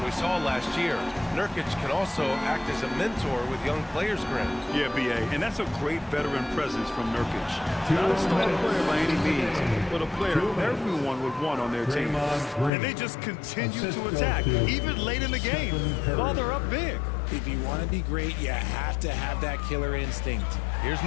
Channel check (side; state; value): right; drops out; at 12.7 s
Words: we saw last year, Nurkic can also act as a mentor with young players, Grant. Yeah, B.A., and that's a great veteran presence from Nurkic. Not a star player by any means, but a player everyone would want on their team. And they just continue to attack, even late in the game, while they're up big. If you want to be great, you have to have that killer instinct. Here's